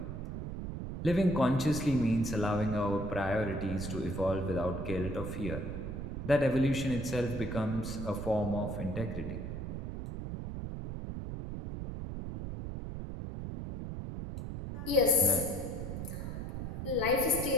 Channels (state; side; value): noise; right; rumble, 6 dB below the sound